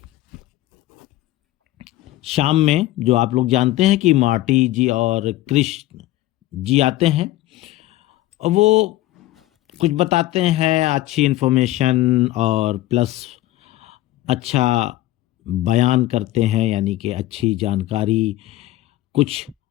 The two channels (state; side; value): quieter; right; 15.8 dB